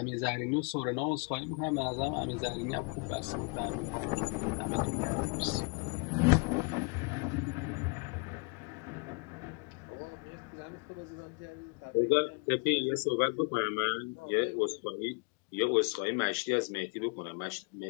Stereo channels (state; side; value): quieter; right; 33.7 dB